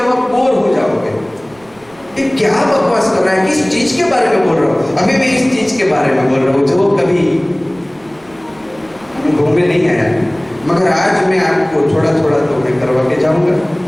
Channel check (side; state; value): right; noise; rumble, 29 dB below the sound